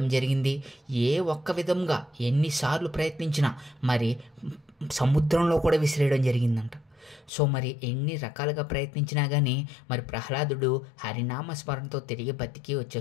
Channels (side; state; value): right; drops out; at 7.3 s